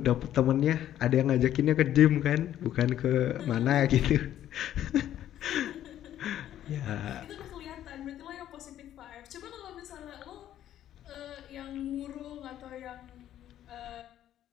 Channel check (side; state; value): right; quieter; 11.7 dB